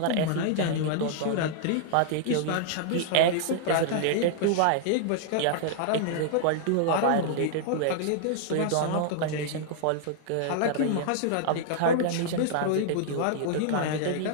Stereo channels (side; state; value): both; different; correlation -0.01